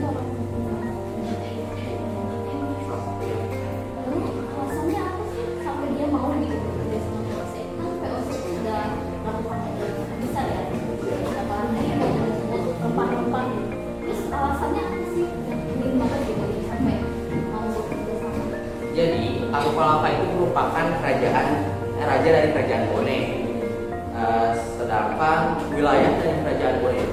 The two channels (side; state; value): both; identical; correlation 1.00